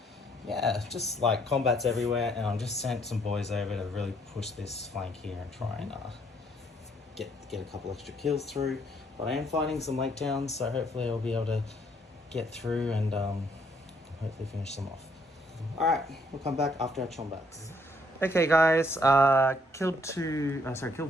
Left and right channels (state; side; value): normal; both; correlation 0.68